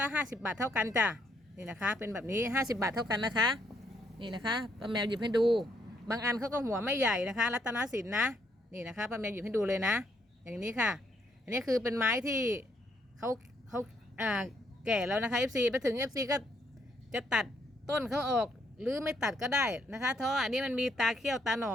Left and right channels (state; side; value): normal; both; correlation 0.72